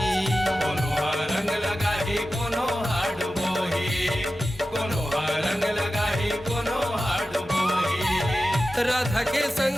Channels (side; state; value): both; normal; correlation 0.93